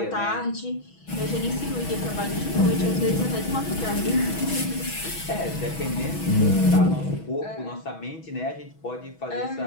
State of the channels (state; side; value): late; right; 6.2 ms